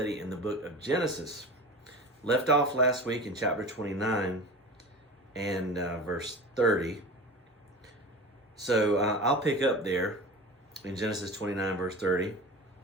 in the book of Genesis. Left off last week in chapter 29 and verse 30. So I'll pick up there in Genesis 29 verse 30,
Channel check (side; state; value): both; normal; correlation 0.33